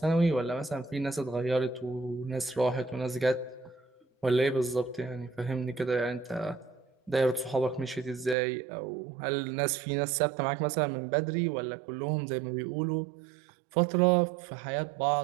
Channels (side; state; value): left; drops out; at 8.3 s